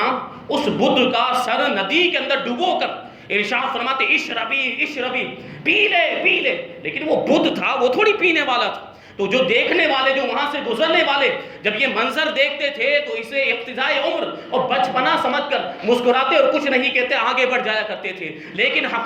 اس بت کا سر ندی کے اندر ڈبو کر ارشاد فرماتے اشربی اشربی، پی لے پی لے، لیکن وہ بت تھا، وہ تھوڑی پینے والا تھا۔ تو جو دیکھنے والے، جو وہاں سے گزرنے والے جب یہ منظر دیکھتے تھے تو اسے ابتدائی عمر اور بچپنا سمجھ کر مسکراتے اور کچھ نہیں کہتے آگے بڑھ جایا کرتے تھے، لیکن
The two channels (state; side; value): identical; both; correlation 1.00